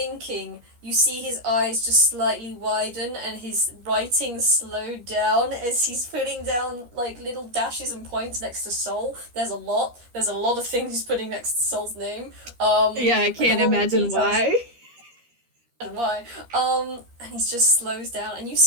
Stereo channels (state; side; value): late; left; 13 ms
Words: you see his eyes just slightly widen and his writing slow down as he's putting down like little dashes and points next to soul. There's a lot. There's a lot of things he's putting next to soul's name. Yeah, I Like a can't lot of imagine details why. and why. And he just slows down, and you